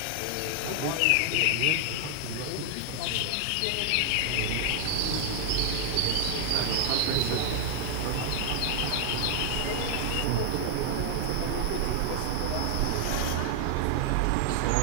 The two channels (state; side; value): different; both; correlation 0.00